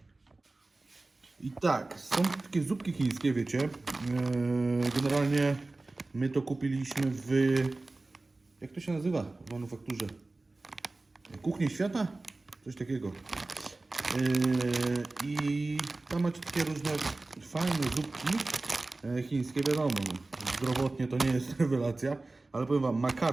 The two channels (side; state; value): left; quieter; 3.2 dB